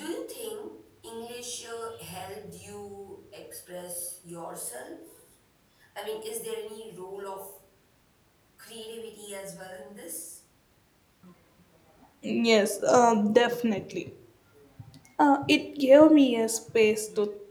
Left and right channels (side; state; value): both; identical; correlation 1.00